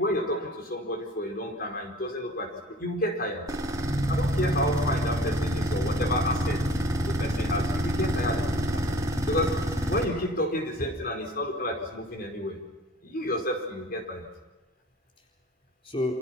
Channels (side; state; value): both; normal; correlation 0.47